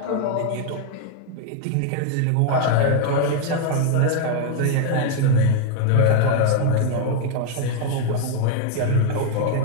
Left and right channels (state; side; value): different; both; correlation 0.00